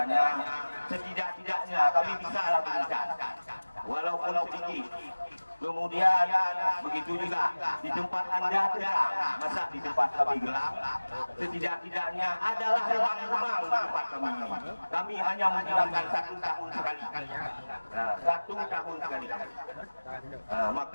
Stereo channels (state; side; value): inverted; both; correlation -1.00